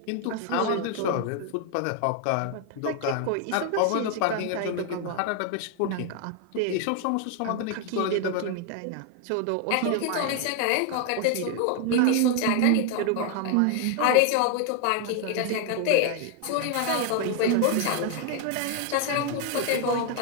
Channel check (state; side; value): different; both; correlation 0.01